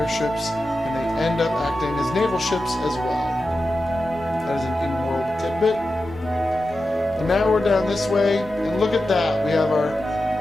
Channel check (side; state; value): both; normal; correlation 0.91